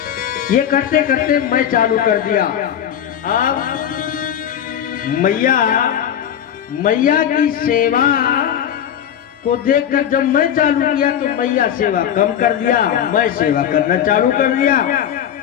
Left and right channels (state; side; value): quieter; right; 9.7 dB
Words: ये करते करते मैं चालू कर दिया। अब मैया की सेवा को देखकर जब मैं चालू किया तो मैया सेवा कम कर दिया, मैं सेवा करना चालू कर दिया।